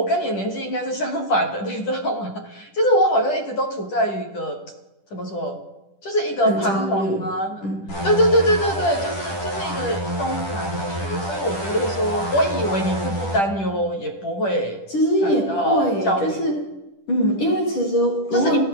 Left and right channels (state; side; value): late; right; 10 ms